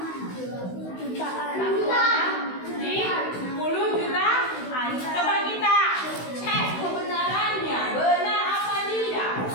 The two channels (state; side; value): late; right; 16 ms